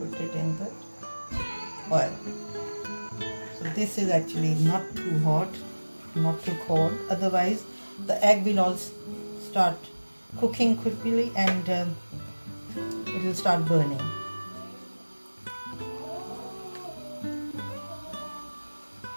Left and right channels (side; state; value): both; inverted; correlation -1.00